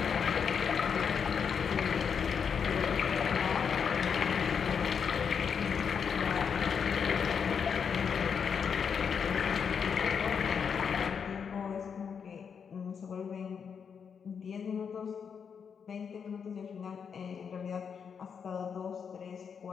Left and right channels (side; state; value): right; quieter; 6.7 dB